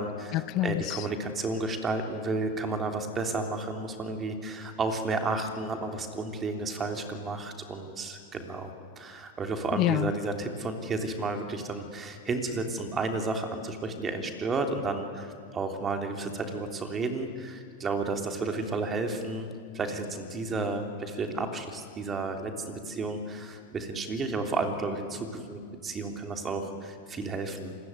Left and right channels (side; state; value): both; normal; correlation 0.41